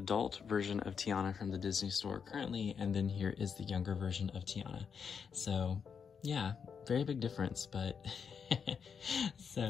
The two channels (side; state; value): right; quieter; 6.6 dB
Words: version of Tiana from the Disney store currently, and then here is the younger version of Tiana. So yeah, very big difference, but